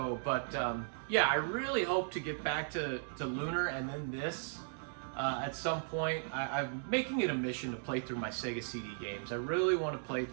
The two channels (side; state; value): left; silent; digital silence